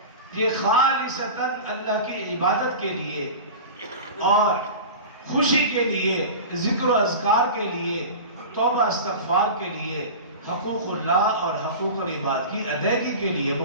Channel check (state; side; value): inverted; both; correlation -0.31